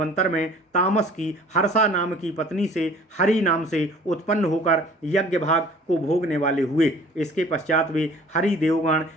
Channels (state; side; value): normal; both; correlation 0.50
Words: में तामस की हर्षा नाम की पत्नी से हरि नाम से उत्पन्न होकर यज्ञ भाग को भोगने वाले हुए। इसके पश्चात वे हरि देवगण